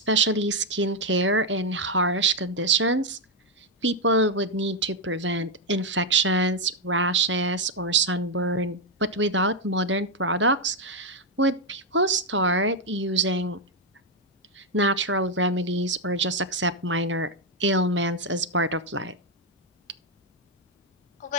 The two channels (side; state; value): both; normal; correlation 0.02